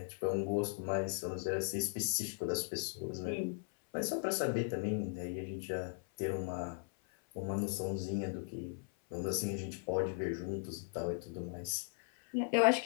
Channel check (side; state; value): right; silent; 52 dB below the other